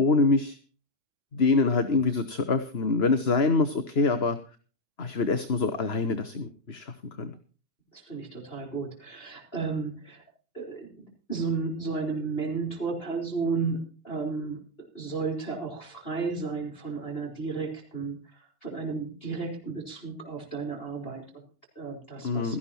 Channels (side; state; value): right; late; 3.0 ms